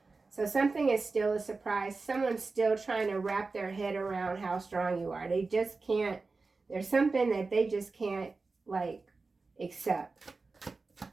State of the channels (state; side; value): quieter; left; 3.9 dB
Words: So something is still a surprise. Someone's still trying to wrap their head around how strong you are. They just can't. There's something that they just can't, like, accept.